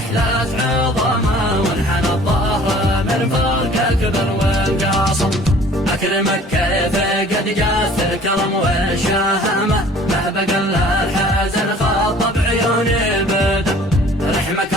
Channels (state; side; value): normal; both; correlation 0.51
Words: عظامه، وانحنى الظهر من فرقه كبر والقاصم. اكرمك كيف قد جاث الكرم والشهامه، ما بقى الا الحزن خاطب عيوني بدم. رحمك